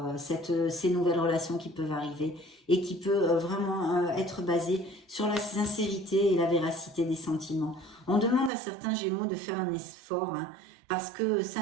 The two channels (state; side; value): drops out; left; at 8.5 s